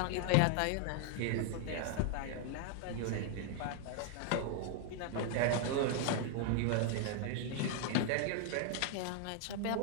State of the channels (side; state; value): both; different; correlation 0.00